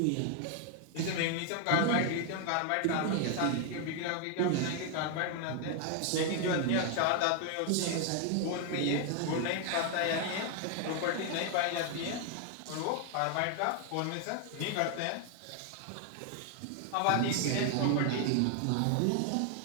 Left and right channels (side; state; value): both; different; correlation 0.00